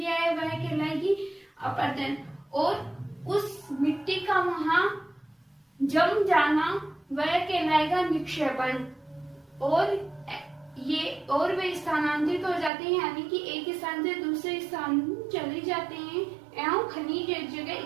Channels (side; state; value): left; drops out; at 12.7 s